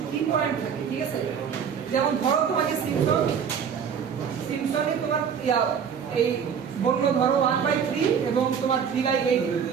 কি পয়েন্ট থাকে, ঠিক আছে, যেমন ধরো তোমাকে সিম্পসন সিম্পসনই তোমার এই বললো ধরো 1/3 এবং তোমার 3/8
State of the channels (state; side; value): quieter; left; 7.3 dB